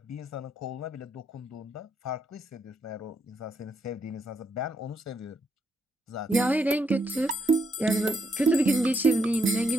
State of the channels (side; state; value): both; normal; correlation 0.77